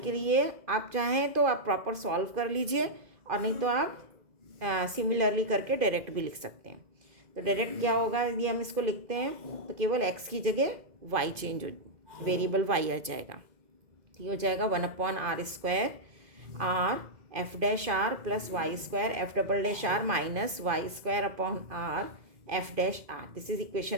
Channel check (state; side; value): late; left; 2.5 ms